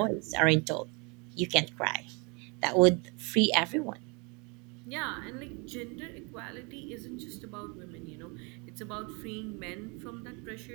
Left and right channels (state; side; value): quieter; left; 31.4 dB